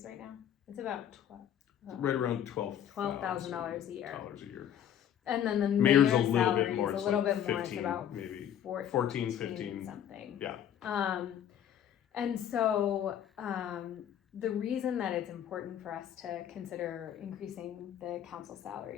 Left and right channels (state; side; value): quieter; right; 9.9 dB